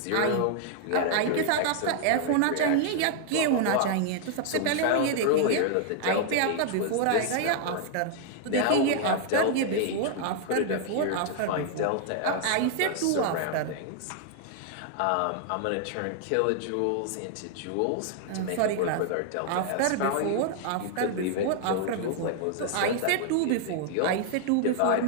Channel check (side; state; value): both; different; correlation 0.00